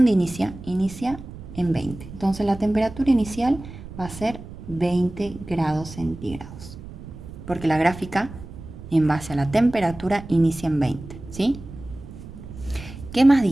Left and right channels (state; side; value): noise; right; rumble, 14 dB below the sound